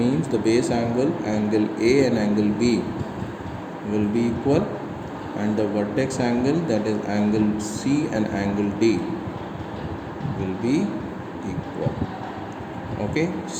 the base angle, angle A and angle B will be equal, and the vertex angle, that is angle C and angle D, will be equal. Okay,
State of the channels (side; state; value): both; identical; correlation 1.00